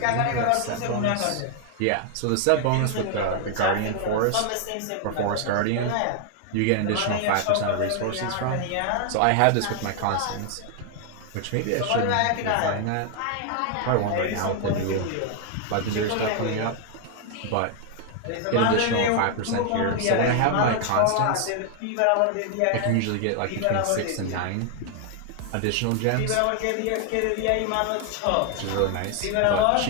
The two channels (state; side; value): different; both; correlation 0.00